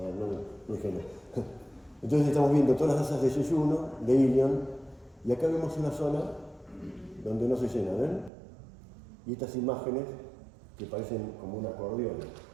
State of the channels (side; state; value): left; drops out; at 8.3 s